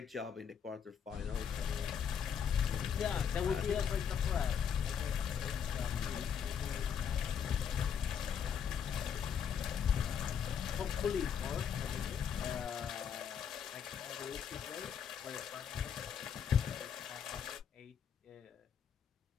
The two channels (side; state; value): right; quieter; 7.7 dB